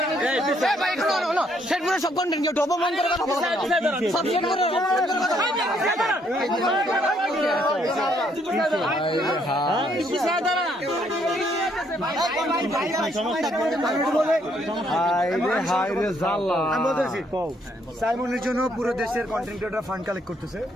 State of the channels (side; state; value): both; normal; correlation 0.70